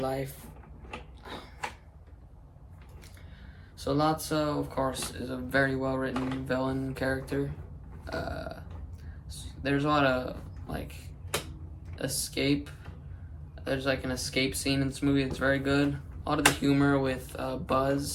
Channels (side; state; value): both; identical; correlation 1.00